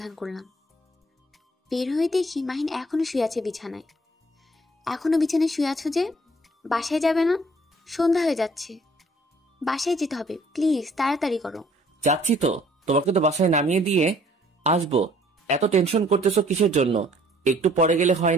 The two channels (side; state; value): both; normal; correlation 0.59